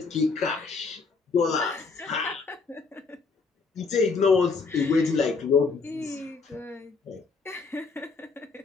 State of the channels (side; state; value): right; quieter; 4.5 dB